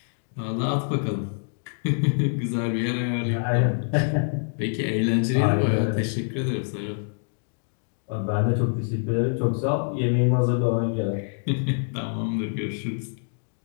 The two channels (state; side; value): silent; right; digital silence